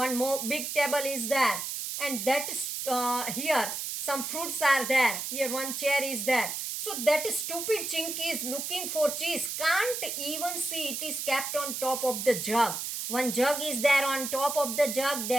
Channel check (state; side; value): noise; right; hiss, 4 dB below the sound